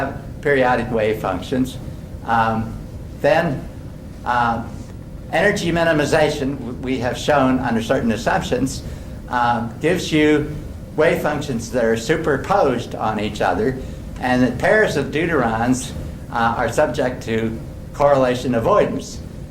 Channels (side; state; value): both; identical; correlation 1.00